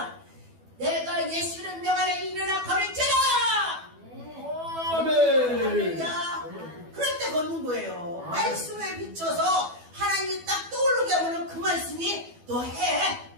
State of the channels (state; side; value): late; left; 12 ms